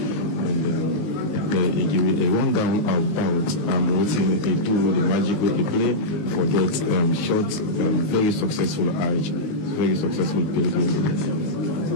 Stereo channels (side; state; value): right; late; 20 ms